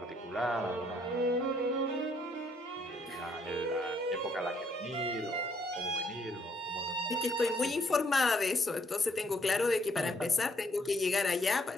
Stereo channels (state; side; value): normal; both; correlation 0.69